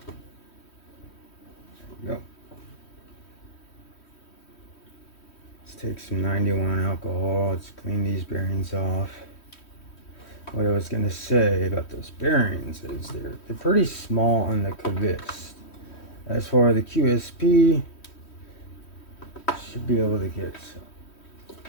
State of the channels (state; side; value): late; right; 3.1 ms